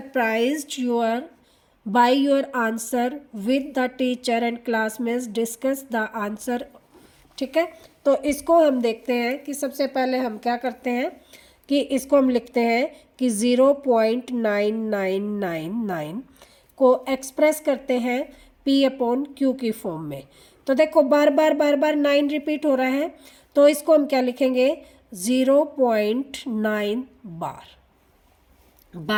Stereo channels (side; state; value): both; identical; correlation 1.00